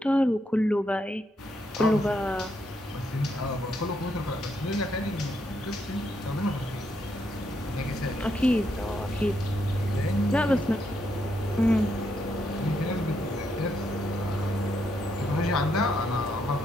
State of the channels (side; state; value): both; normal; correlation 0.78